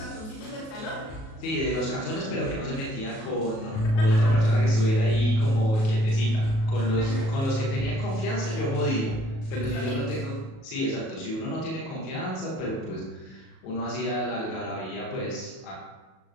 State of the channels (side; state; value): right; late; 37 ms